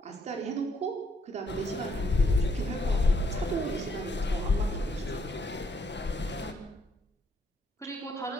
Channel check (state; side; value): normal; both; correlation 0.72